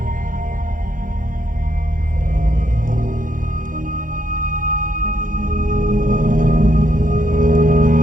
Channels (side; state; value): left; late; 0.39 ms